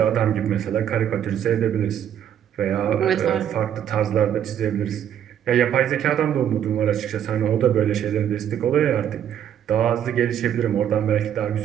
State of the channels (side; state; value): left; quieter; 9.7 dB